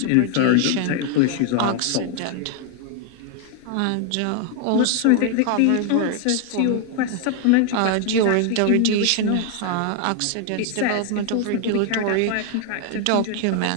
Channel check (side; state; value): both; different; correlation 0.00